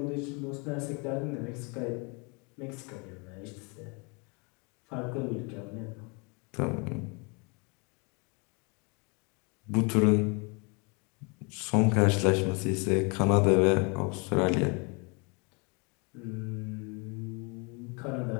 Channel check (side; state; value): right; quieter; 31.9 dB